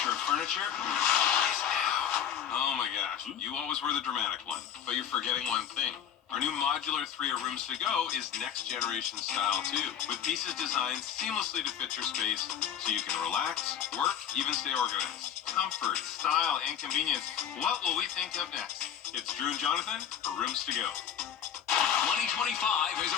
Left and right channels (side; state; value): right; quieter; 9.0 dB